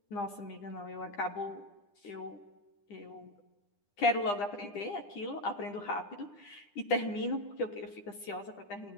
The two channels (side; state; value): right; late; 9.9 ms